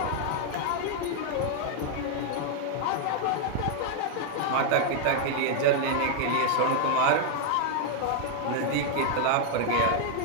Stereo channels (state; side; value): different; both; correlation 0.00